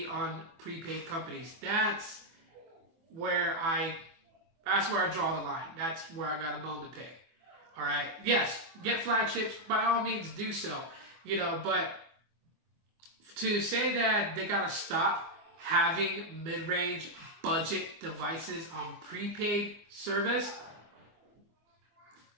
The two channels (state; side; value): late; left; 24 ms